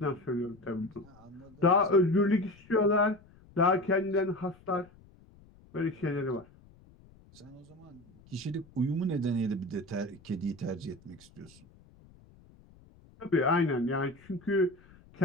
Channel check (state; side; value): noise; left; rumble, 26 dB below the sound